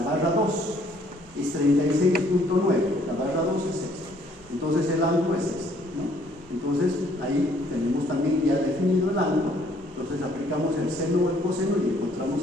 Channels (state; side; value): normal; both; correlation 0.63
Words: barra 2 es 36.9, la barra 2 es esta. Entonces el ángulo es este, ¿no? Entonces ahí tenemos también ya definido el ángulo. Entonces aplicamos el seno o el coseno y encontramos